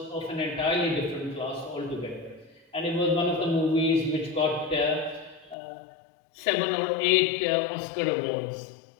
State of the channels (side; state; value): right; drops out; at 5.6 s